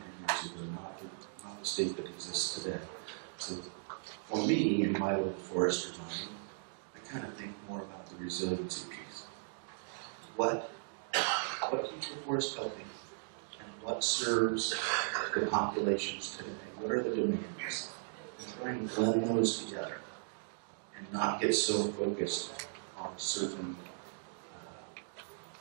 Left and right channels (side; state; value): left; silent; digital silence